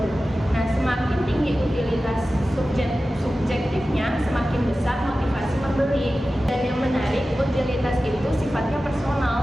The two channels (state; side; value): normal; both; correlation 0.95